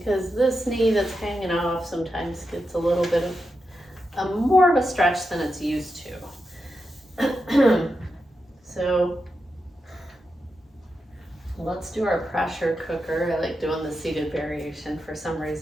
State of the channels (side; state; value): both; normal; correlation 0.88